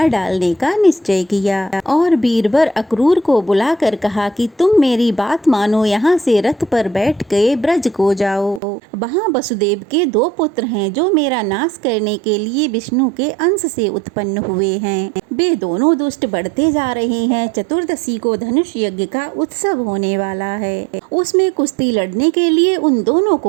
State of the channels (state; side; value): drops out; left; at 8.6 s